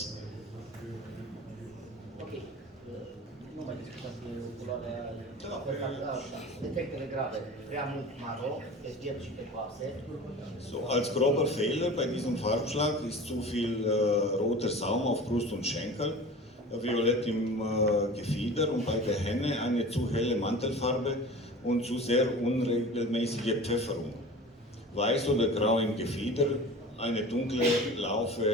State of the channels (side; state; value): both; normal; correlation 0.37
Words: ok. Nu mai discutați culoarea. Defectele grave, prea mult maro, pe piept și pe coase. So, als grober Fehler bei diesem Farbschlag ist zu viel roter Saum auf Brust und Schenkel, violett im Gefieder und bei der Henne eine zu helle Mantelfarbe und zu sehr unregelmäßige Pfefferung. Weiß oder grau im Gefieder, eine dunkle